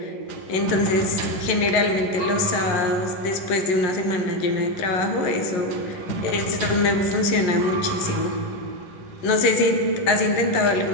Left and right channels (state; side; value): late; right; 11 ms